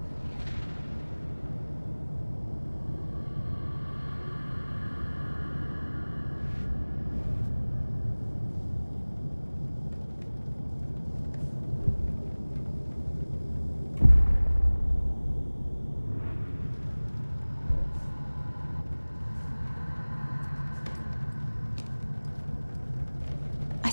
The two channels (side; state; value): both; inverted; correlation -1.00